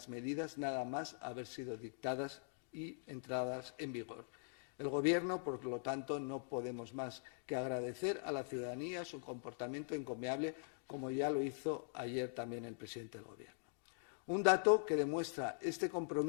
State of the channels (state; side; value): silent; right; digital silence